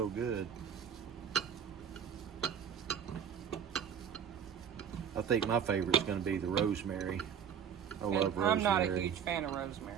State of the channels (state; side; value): quieter; left; 7.9 dB